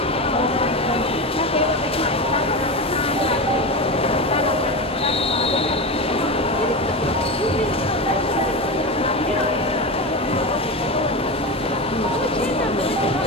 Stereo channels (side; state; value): both; normal; correlation 0.20